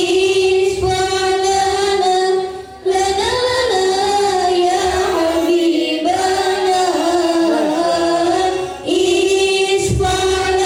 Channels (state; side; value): identical; both; correlation 1.00